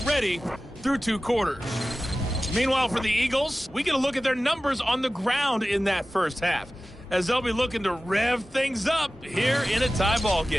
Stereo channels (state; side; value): normal; both; correlation 0.96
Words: through 2 quarters. Meanwhile, for the Eagles, we get a look at their numbers on the ground in that first half, as they'll be looking to rev things up here in a tie ball